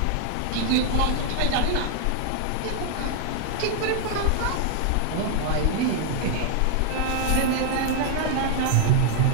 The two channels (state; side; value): different; both; correlation 0.00